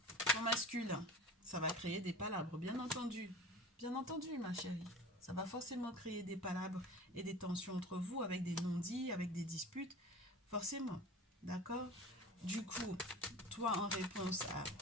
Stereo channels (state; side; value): normal; both; correlation 0.36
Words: ton masculin, ça va créer des palabres, bien entendu. Bien entendu, ma chérie. Ça va forcément créer des palabres et des tensions entre vous avec des non-dits, avec des disputes. Forcément, d'accord? Du coup, toi, en réponse à